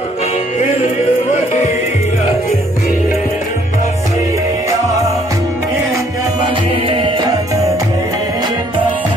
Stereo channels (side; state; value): both; normal; correlation 0.64